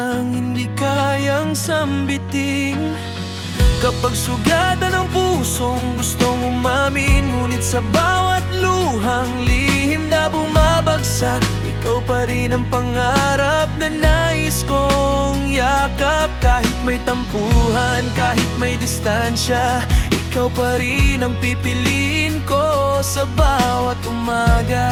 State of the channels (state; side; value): identical; both; correlation 1.00